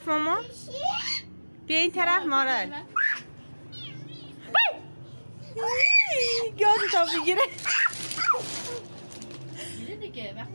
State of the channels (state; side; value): inverted; both; correlation -1.00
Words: ماما. بیا این طرف مارال. گاز تا بگیره.